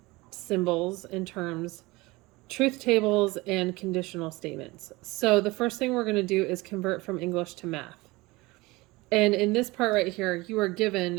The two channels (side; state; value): left; quieter; 22.0 dB